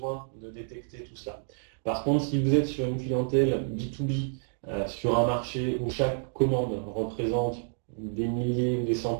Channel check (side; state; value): left; silent; digital silence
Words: de détecter tout cela. Par contre, si vous êtes sur une clientèle B2B, sur un marché où chaque commande représente des milliers ou des